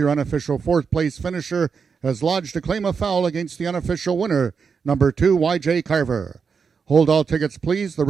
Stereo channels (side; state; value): left; quieter; 5.8 dB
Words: unofficial 4th place finisher, has lodged a claim of foul against the unofficial winner, number 2, YJ Carver. Hold all tickets, please. The